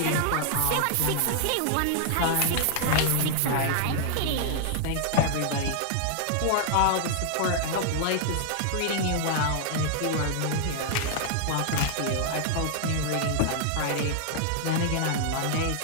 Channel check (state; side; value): different; both; correlation 0.00